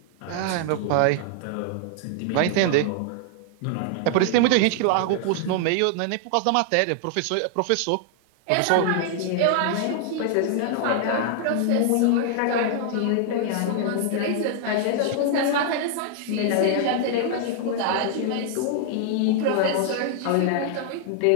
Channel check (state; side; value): different; both; correlation 0.00